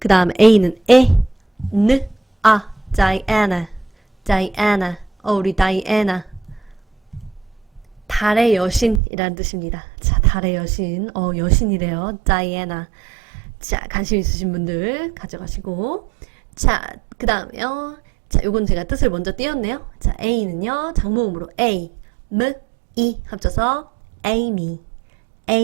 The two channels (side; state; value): left; drops out; at 9.0 s